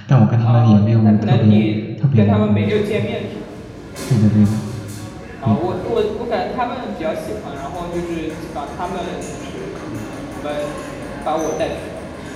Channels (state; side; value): identical; both; correlation 1.00